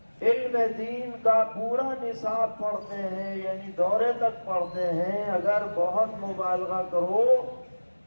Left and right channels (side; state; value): both; inverted; correlation -1.00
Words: علم دین کا پورا نصاب پڑھتے ہیں، یعنی دورے تک پڑھتے ہیں، اگر بہت مبالغہ کرو